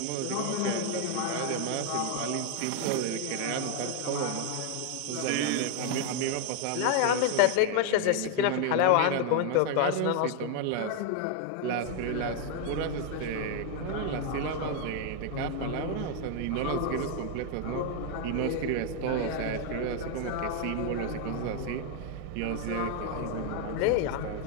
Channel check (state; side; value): different; both; correlation 0.00